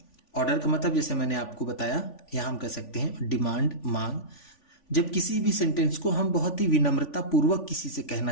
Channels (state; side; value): late; right; 3.5 ms